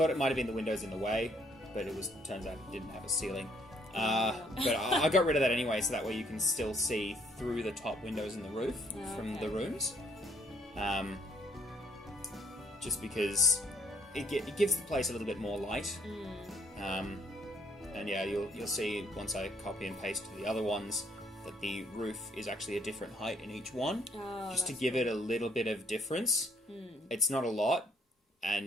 it might have been the windows in the way, but turns out it didn't have a ceiling. But I got rid of that anyway, so that way you can still see through the top windows in the roof from the rooms. Just because it gives the place a little bit more light. And yeah, you'll see once I copy and paste to the other ones that the roof is actually a different height in each one, just to give it a little bit of difference. It's not a lot,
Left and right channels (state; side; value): normal; both; correlation 0.66